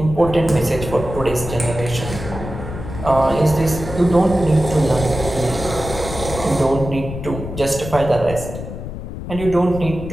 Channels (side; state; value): left; noise; rumble, 9 dB below the sound